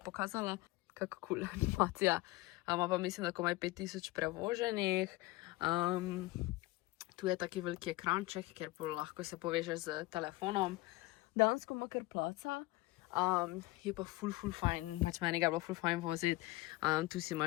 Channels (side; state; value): right; quieter; 19.6 dB